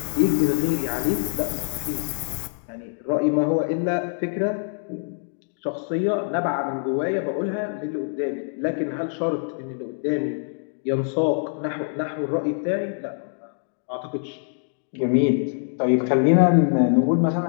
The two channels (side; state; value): right; silent; digital silence